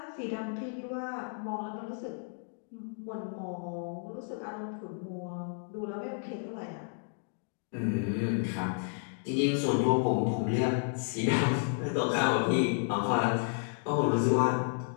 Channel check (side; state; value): right; silent; 56 dB below the other